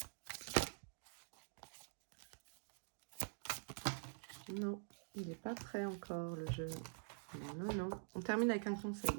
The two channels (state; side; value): silent; left; digital silence